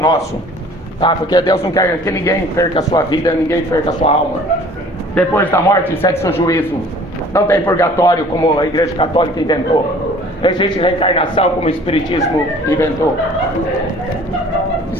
Tá? Porque Deus não quer que ninguém perca a sua vida, ninguém perca a sua alma. Depois da morte, segue seu juízo. Não tem purgatório como a Igreja Católica inventou. Não existe reencarnação como o Espiritismo inventou.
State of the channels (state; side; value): normal; both; correlation 0.50